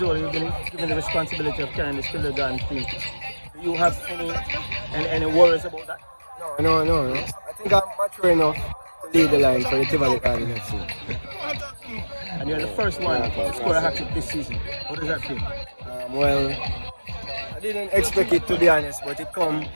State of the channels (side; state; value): both; inverted; correlation -1.00